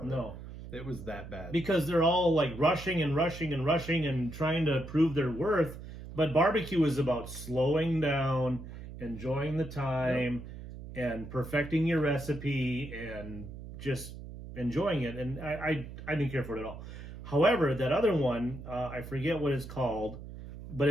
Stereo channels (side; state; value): right; noise; hum, 12 dB below the sound